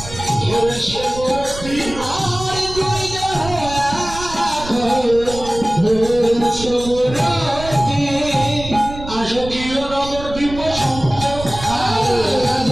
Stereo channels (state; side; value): noise; right; rumble, 12 dB below the sound